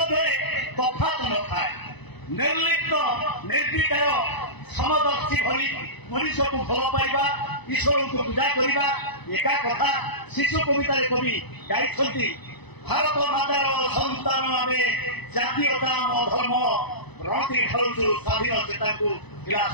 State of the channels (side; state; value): right; late; 1.0 ms